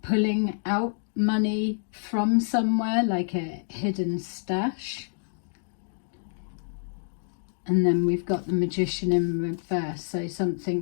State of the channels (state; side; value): silent; right; digital silence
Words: pulling out money from somewhere, like a hidden stash. And then we've got the Magician in reverse, so